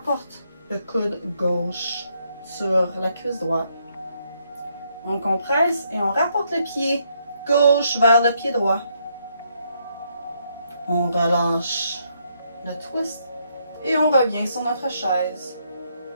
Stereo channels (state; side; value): inverted; both; correlation -0.74